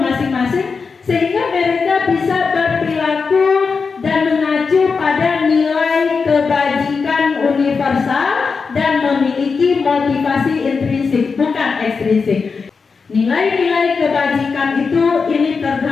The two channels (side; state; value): right; quieter; 5.0 dB